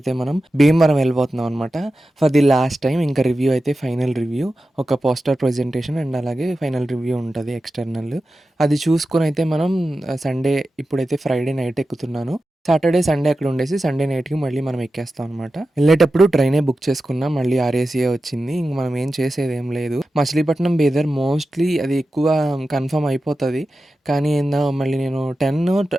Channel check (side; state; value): both; normal; correlation 0.93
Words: మనం భీమవరం వెళ్ళిపోతున్నాం అనమాట. For the last time. ఇంకా రివ్యూ అయితే ఫైనల్ రివ్యూ, ఒక పోస్టర్ ప్రజెంటేషన్ అండ్ అలాగే ఫైనల్ రివ్యూ ఉంటుంది ఎక్స్టర్నల్. అది చూసుకొని అయితే మనం సండే, ఇప్పుడైతే ఫ్రైడే నైట్ ఎక్కుతున్నాను. సాటర్డే సండే అక్కడ ఉండేసి సండే నైట్కి మళ్ళీ మనం ఎక్కేస్తాం అనమాట. వెళ్ళేటప్పుడు ట్రైనే బుక్ చేసుకున్నాం, మళ్ళీ ఆర్ఏసీఏ వచ్చింది. ఇంక మనం ఏం చేసేది ఏం లేదు. మచిలీపట్నం బీదర్ మోస్ట్లీ అది ఎక్కువ కన్ఫర్మ్ అయిపోతుంది. కానీ ఏందో మళ్ళీ నేను